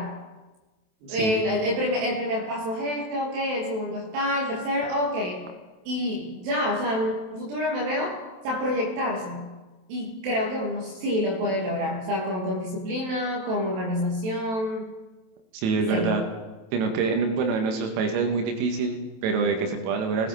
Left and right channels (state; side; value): late; left; 27 ms